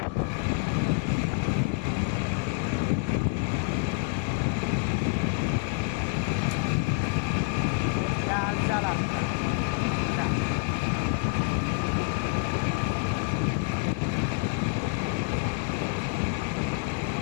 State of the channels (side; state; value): right; quieter; 30.1 dB